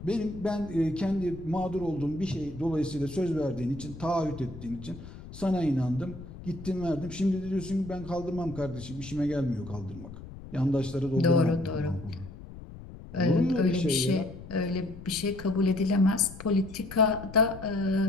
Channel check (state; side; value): noise; left; rumble, 14 dB below the sound